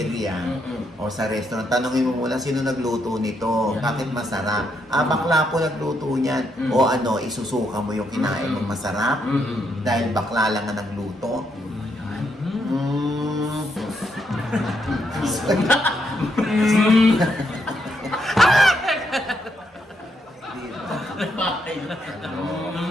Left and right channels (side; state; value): both; normal; correlation 0.78